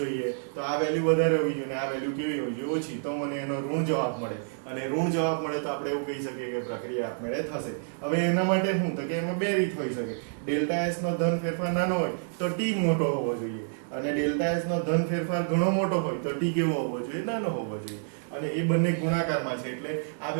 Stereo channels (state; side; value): silent; left; digital silence